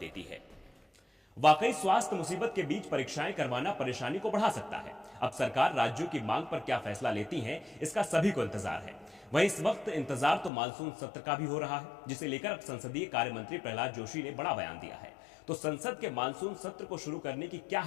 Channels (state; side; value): drops out; right; at 10.5 s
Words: देती है। वाकई स्वास्थ्य मुसीबत के बीच परीक्षाएं करवाना परेशानी को बढ़ा सकता है। अब सरकार राज्यों की मांग पर क्या फैसला लेती है, इसका सभी को इंतजार है। वहीं इस वक्त इंतजार तो मानसून सत्र का भी हो रहा है, जिसे लेकर अब संसदीय कार्य मंत्री प्रहलाद जोशी ने बड़ा बयान दिया है। तो संसद के मानसून सत्र को शुरू करने की क्या